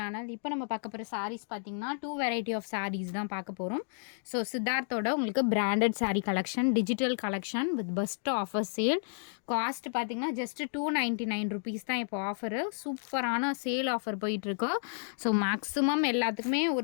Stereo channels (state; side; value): silent; right; digital silence